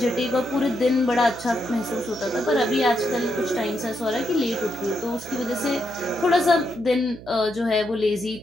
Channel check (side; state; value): right; noise; hum, 16 dB below the sound